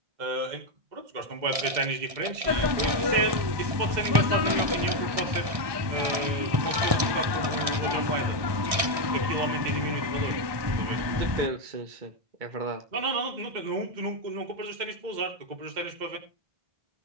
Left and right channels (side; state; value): left; late; 1.6 ms